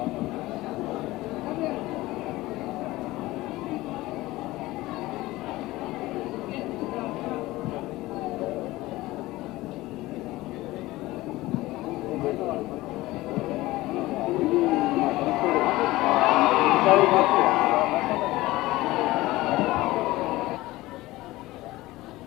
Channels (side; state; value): right; quieter; 18.5 dB